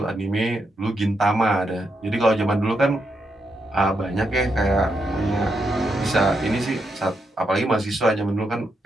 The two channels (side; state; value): both; normal; correlation 0.82